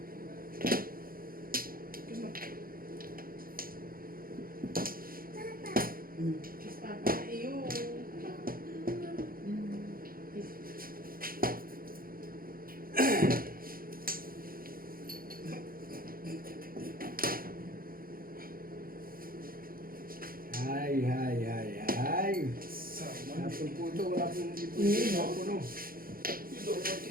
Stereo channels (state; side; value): late; left; 0.42 ms